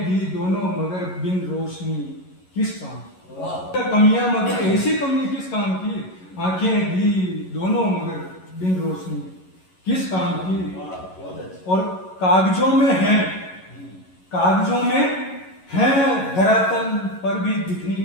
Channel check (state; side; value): late; right; 11 ms